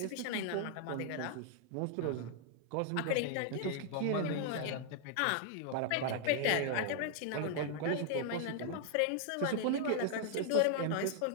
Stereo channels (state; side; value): different; both; correlation 0.00